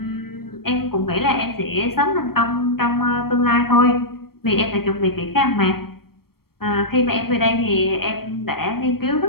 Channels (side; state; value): right; late; 0.94 ms